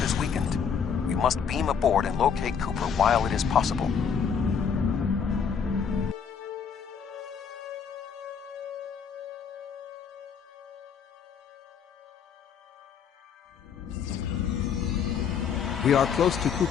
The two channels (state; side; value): quieter; right; 6.9 dB